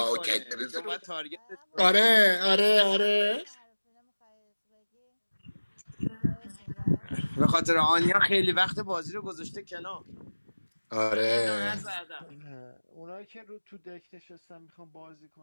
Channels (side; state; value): both; inverted; correlation -1.00